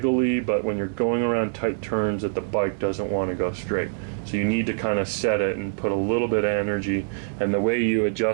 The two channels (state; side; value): silent; left; 62 dB below the other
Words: but when you're going around tight turns that the bike doesn't want to go straight. So you need to kind of set it and put a little bit of energy, and the way you